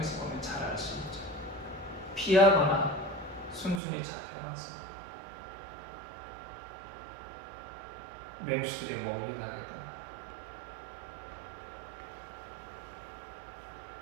보면 잘 알 수 있죠. 피하거나 순순히 잡혀가서 맹수들의 먹이가 되거나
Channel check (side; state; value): left; drops out; at 3.8 s